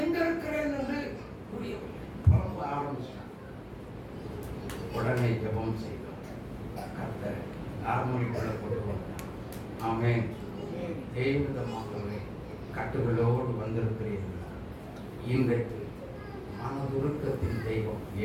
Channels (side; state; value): both; identical; correlation 1.00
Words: இருக்கிறேன் என்று புரியவில்லை. புலம்ப ஆரம்பிச்சான். உடனே ஜெபம் செய்தோம். கர்த்தர் நார்மலுக்குள்ள கொண்டு வந்தார். ஆமென். தேவதமாகவே கட்டுகளோடு வந்திருக்கிறீர்களா? இன்றைக்கு மனதுருக்கத்தின் தெய்வம்